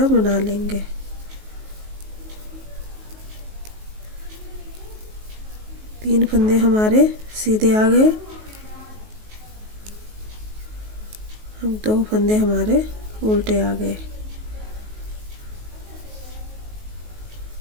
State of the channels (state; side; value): late; left; 19 ms